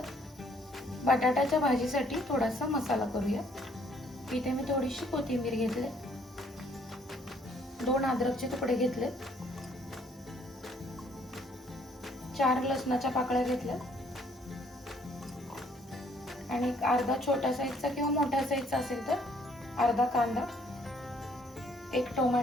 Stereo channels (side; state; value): both; normal; correlation 0.64